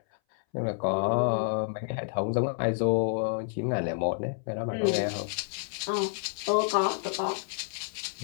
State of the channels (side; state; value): right; silent; 58 dB below the other